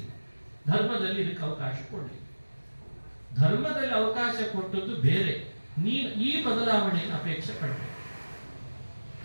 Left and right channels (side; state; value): both; inverted; correlation -1.00